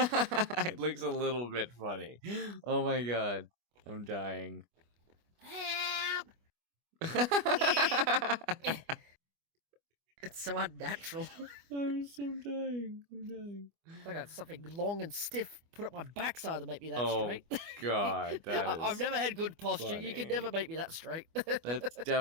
looks a little bit funny. Oh my god. I'm dying. Help! Yeah. I'm It's so unnatural. so dying. I'm dying. I got something long and stiff put up my backside to make me that Oh straight. god, that I've is never had good posture. You can funny. never make me that straight. That's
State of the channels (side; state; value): left; late; 25 ms